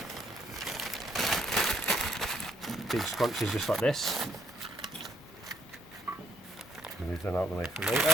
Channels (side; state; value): both; normal; correlation 0.69